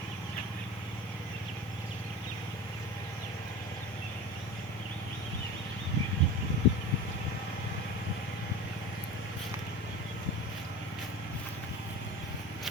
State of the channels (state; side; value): normal; both; correlation 0.31